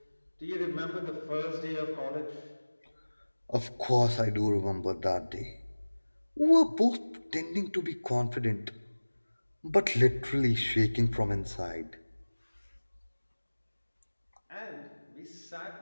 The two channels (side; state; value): both; inverted; correlation -1.00